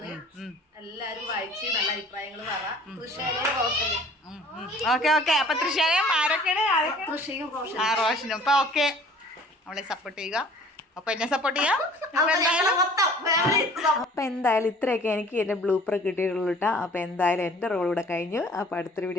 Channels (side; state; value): both; normal; correlation 0.50